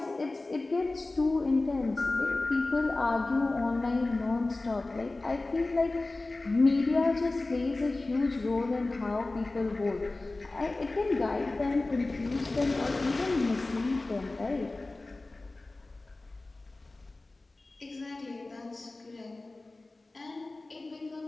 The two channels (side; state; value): right; quieter; 3.1 dB